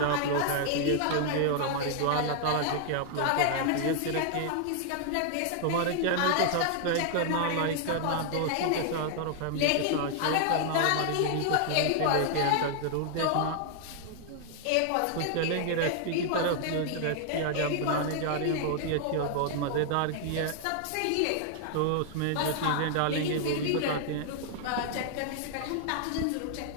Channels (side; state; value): both; different; correlation 0.00